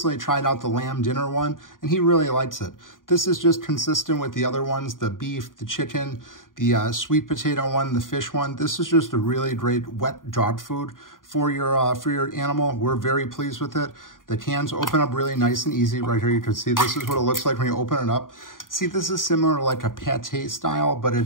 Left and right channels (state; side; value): late; right; 0.89 ms